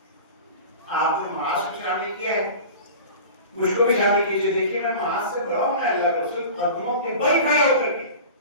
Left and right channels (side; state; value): both; inverted; correlation -0.36